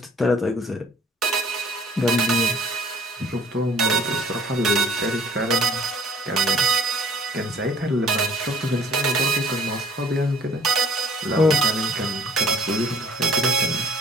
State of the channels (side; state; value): both; normal; correlation 0.55